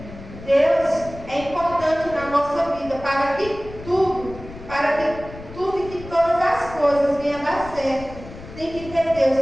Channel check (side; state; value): left; noise; rumble, 15 dB below the sound